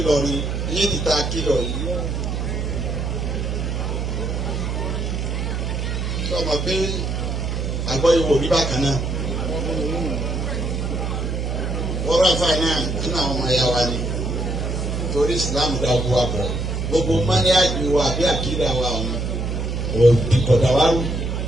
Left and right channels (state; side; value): noise; right; hum, 2 dB below the sound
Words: yìí ti ta kílọ̀ yìí. sọ ma pé àgbọ̀ ìwò rí bákan náà. wọ́n rà fáì náà nínú àwọn ọmọ ẹ̀yà wa ni torí ìsìlámù dá gbogbo wa bọ̀ gbogbo mọ́níyàjú wa àbí àkídà wa ọ̀hún òdìkọ̀dà wa rú.